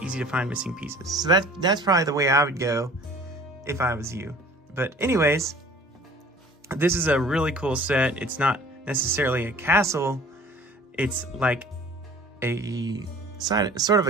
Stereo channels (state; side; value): normal; both; correlation 0.48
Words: missing pieces. So that's probably the way I would go if I was you. But anyways, this is a really cool set. It's not necessarily a castle, it's like a sort of